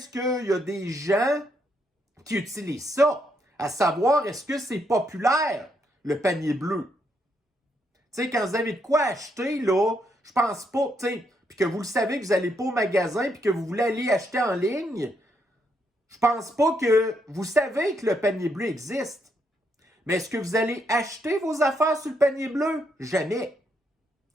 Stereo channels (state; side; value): normal; both; correlation 0.77